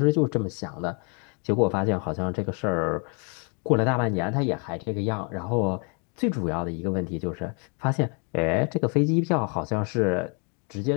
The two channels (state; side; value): quieter; right; 37.0 dB